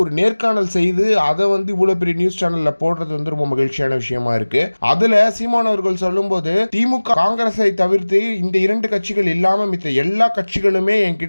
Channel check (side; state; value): both; inverted; correlation -1.00